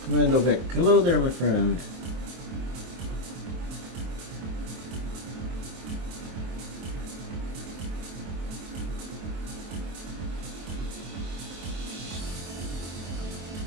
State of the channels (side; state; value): left; late; 23 ms